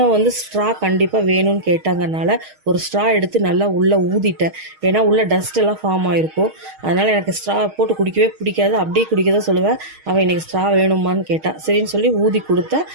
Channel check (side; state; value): left; late; 6.4 ms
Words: ஸ்ட்ரா கண்டிப்பாக வேணும்னு கேட்டாங்கனால ஒரு ஸ்ட்ரா எடுத்து நல்லா உள்ளே ஊதிட்டேன். ஏன்னா உள்ளே டஸ்ட் எல்லாம் ஃபார்ம் ஆகிருக்கும். அதனால் எனக்கு ஸ்ட்ரா போட்டு குடிக்கவே பிடிக்காது. அப்படியே குடிக்க தான் சொல்லுவேன். அவன் இன்றைக்கி ஸ்ட்ரா வேணுமான்னு கேட்டான். சரின்னு சொல்லி ஊதி கொடுத்தேன்.